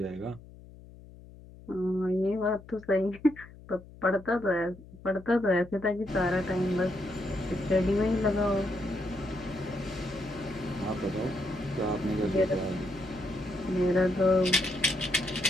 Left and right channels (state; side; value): noise; left; hum, 19 dB below the sound